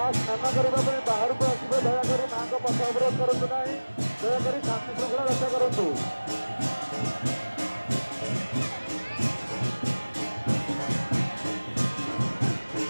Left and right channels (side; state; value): both; inverted; correlation -1.00